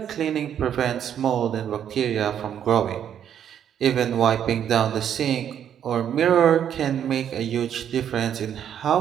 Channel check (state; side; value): quieter; left; 9.4 dB